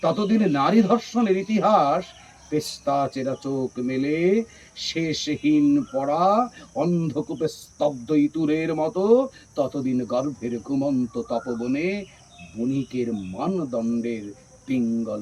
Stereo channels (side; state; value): both; identical; correlation 1.00